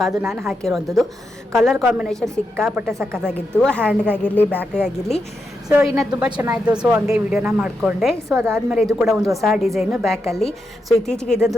ನಾನು ಹಾಕಿರೋವಂಥದ್ದು. ಕಲರ್ ಕಾಂಬಿನೇಷನ್ ಸಿಕ್ಕಾಪಟ್ಟೆ ಸಕ್ಕತ್ತಾಗಿತ್ತು, ಹ್ಯಾಂಡ್ಗಾಗಿರಲಿ ಬ್ಯಾಕ್ಗಾಗಿರಲಿ. ಸೊ ಇನ್ನು ತುಂಬ ಚೆನ್ನಾಗಿತ್ತು. ಸೊ ಹಂಗೆ ವಿಡಿಯೋನ ಮಾಡಿಕೊಂಡೆ. ಸೊ ಅದಾದಮೇಲೆ ಇದು ಕೂಡ ಒಂದು ಹೊಸ ಡಿಸೈನು ಬ್ಯಾಕಲ್ಲಿ. ಸೊ ಇತ್ತೀಚೆಗೆ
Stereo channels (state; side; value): normal; both; correlation 0.85